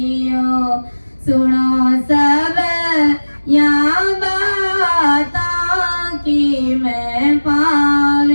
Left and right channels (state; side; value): inverted; both; correlation -1.00